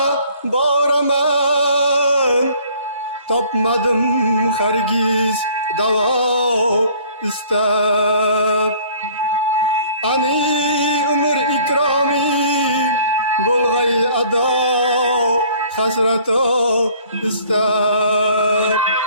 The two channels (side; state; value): both; inverted; correlation -0.54